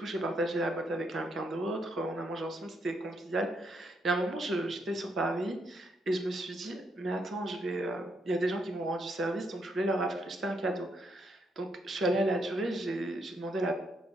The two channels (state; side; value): normal; both; correlation 0.76